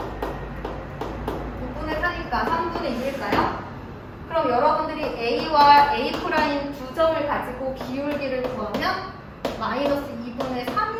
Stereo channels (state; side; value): identical; both; correlation 1.00